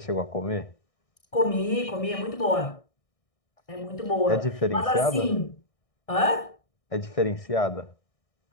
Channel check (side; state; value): right; late; 1.6 ms